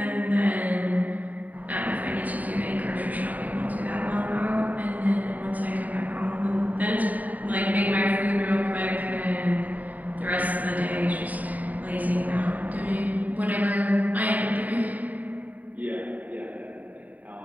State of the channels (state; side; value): late; left; 0.076 ms